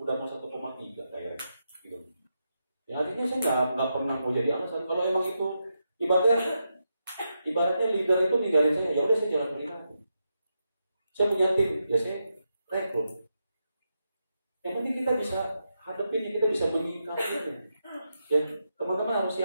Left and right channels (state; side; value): inverted; both; correlation -0.85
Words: mau 1,3 direct, gitu. Ya artinya saya nggak pernah mau jadi alasan. Kalau emang itu ibaratnya leader itu ninggalin saya, ya udah saya jalan pribadi. Saya punya tim, ya saya rekrut. Yang penting kita bisa hadapin, kita bisa menyikapinya. Ya teman-teman harus